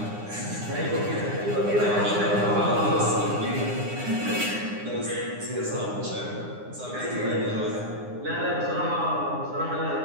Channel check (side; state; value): left; late; 9.8 ms